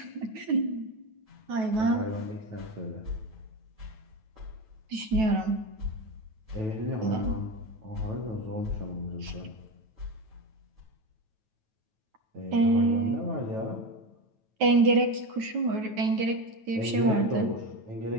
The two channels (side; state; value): left; late; 9.2 ms